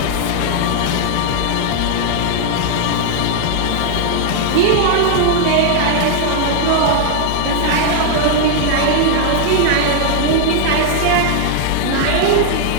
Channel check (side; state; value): both; different; correlation 0.00